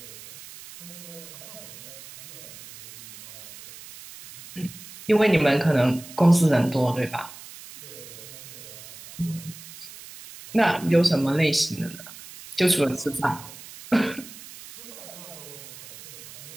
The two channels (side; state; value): right; noise; hiss, 16 dB below the sound